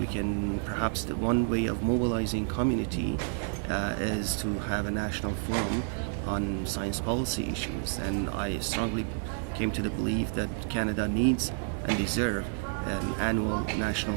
can, perhaps the one way of mobilizing community is to have a national forum on science policy issues. And I strongly came to the belief that Canada needs and deserves an annual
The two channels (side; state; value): left; silent; 58 dB below the other